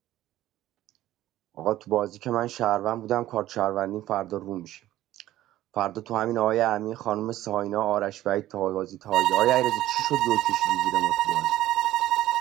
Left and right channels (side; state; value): left; quieter; 14.4 dB